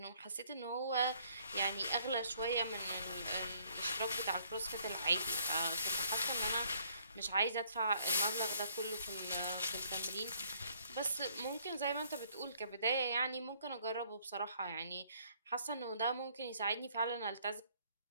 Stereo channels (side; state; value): both; inverted; correlation -0.64